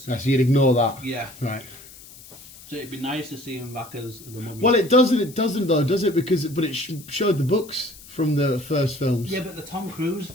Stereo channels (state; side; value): noise; left; hiss, 19 dB below the sound